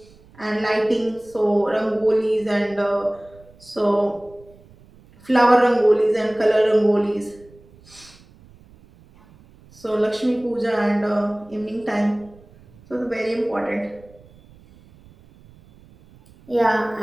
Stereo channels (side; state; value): right; noise; rumble, 26 dB below the sound